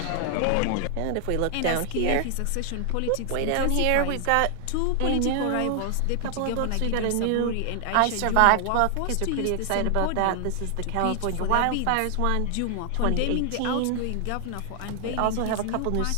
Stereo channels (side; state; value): both; different; correlation 0.00